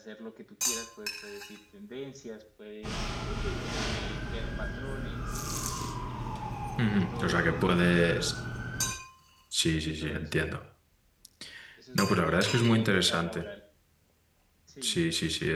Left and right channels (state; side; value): identical; both; correlation 1.00